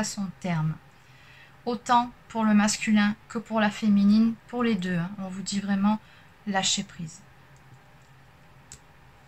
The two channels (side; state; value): both; identical; correlation 1.00